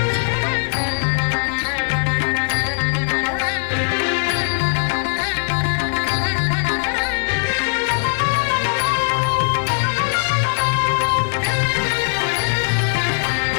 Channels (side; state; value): right; silent; digital silence